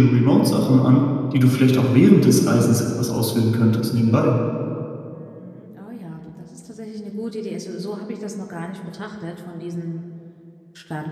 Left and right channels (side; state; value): both; identical; correlation 1.00